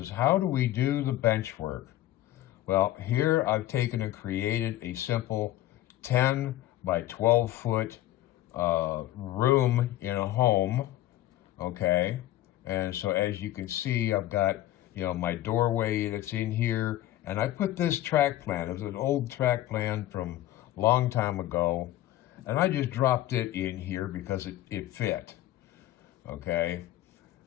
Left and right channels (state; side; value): quieter; right; 14.5 dB